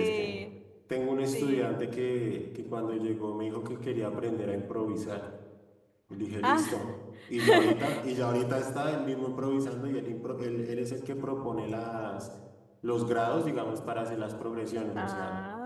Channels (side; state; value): both; identical; correlation 1.00